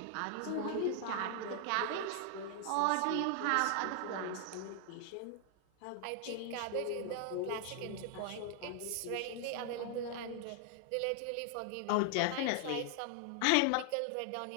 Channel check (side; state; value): both; different; correlation 0.00